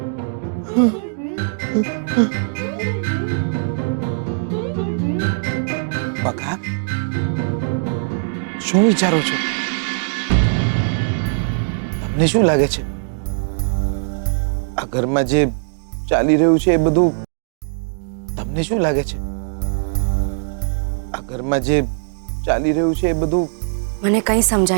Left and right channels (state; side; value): silent; left; digital silence